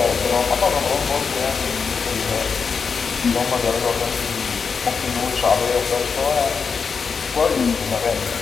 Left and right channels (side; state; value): right; quieter; 5.6 dB